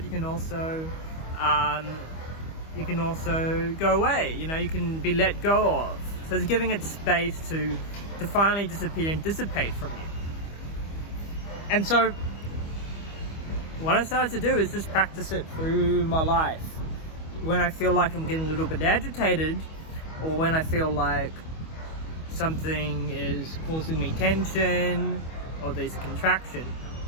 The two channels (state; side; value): late; right; 25 ms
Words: you can also go away, you can be let go of. So it's giving it space to finally disappear and dissipate from you. And so what I started to do is just practice it through my life. When I feel like I'm getting a little bit agitated, or when I feel like something is causing me tension, or there's a contraction,